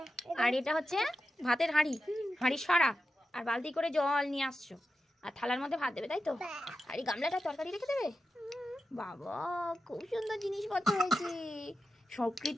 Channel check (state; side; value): normal; both; correlation 0.89